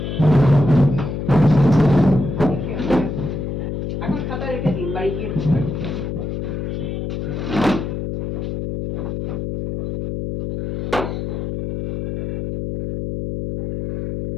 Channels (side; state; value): left; noise; hum, 4 dB below the sound